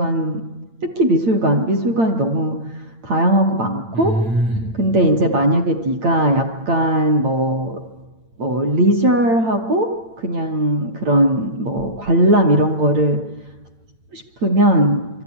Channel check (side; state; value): left; late; 8.9 ms